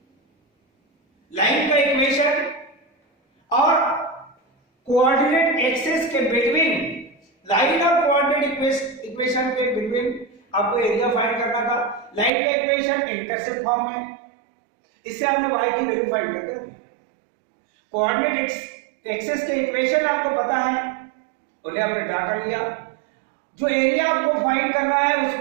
line का इक्वेशन और कोऑर्डिनेट एक्सिस के बिटवीन, लाइन और कोऑर्डिनेट इक्वेशन के बिटवीन आपको एरिया फाइंड करना था, लाइन का इक्वेशन इंटरसेप्ट फॉर्म में, इससे हमने y की वैल्यू फाइंड करके रखी, कोऑर्डिनेट एक्सिस के इक्वेशन आपको पता है, उन्हें हमने ड्रा कर लिया, जो एरिया आपको फाइंड करना है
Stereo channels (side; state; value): left; drops out; at 12.3 s